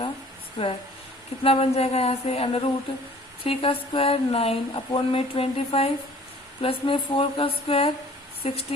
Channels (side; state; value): both; normal; correlation 0.52